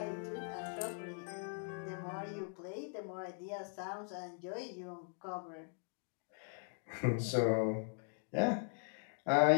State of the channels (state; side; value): silent; right; 51 dB below the other